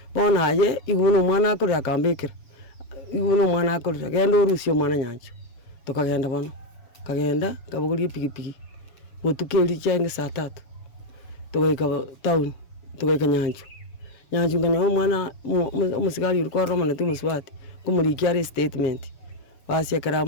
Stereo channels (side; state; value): right; late; 7.1 ms